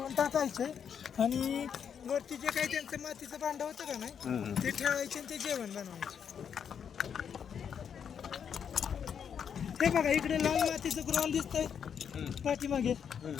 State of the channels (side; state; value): right; quieter; 7.7 dB